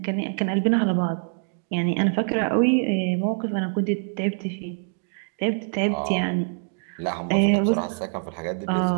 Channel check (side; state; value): left; silent; digital silence